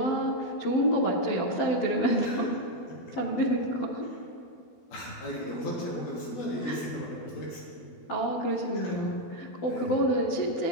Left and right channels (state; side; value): late; right; 12 ms